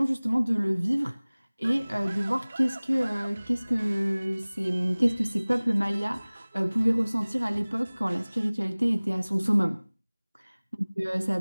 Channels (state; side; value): inverted; both; correlation -1.00